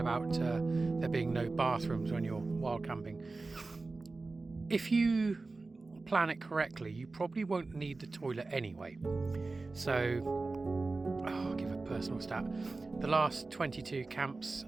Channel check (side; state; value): left; quieter; 3.6 dB